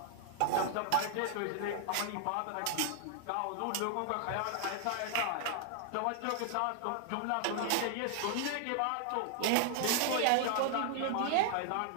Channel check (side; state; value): both; different; correlation 0.00